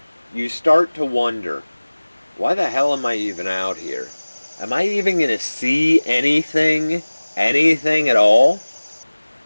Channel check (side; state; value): both; inverted; correlation -1.00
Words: you start to wonder, why the hell am I even out here? Am I even going to see anything at all?